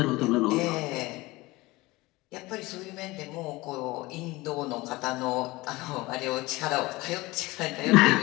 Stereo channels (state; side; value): quieter; right; 21.0 dB